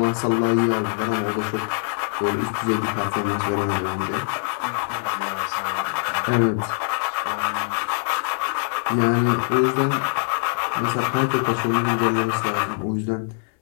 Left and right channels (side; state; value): right; silent; 58 dB below the other